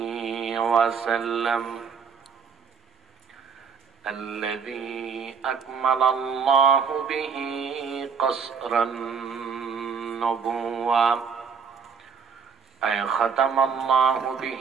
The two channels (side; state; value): left; quieter; 6.2 dB